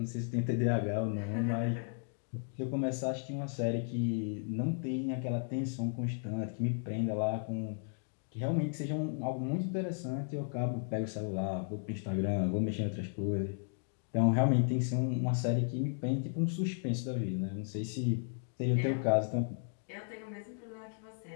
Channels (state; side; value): silent; right; digital silence